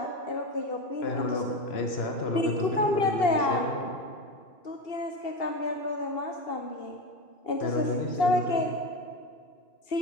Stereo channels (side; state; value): right; late; 2.8 ms